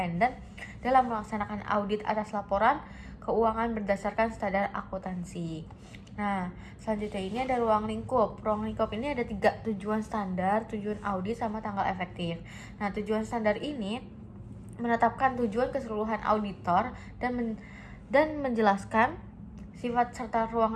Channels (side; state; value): both; identical; correlation 1.00